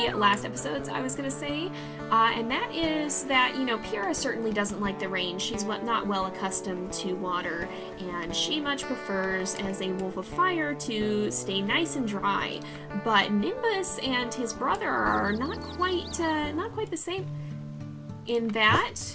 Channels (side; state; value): both; identical; correlation 1.00